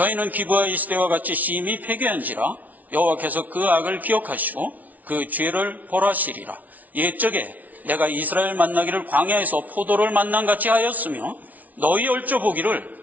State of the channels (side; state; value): left; late; 0.075 ms